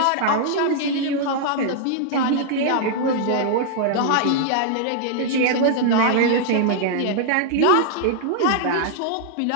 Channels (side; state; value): both; different; correlation -0.01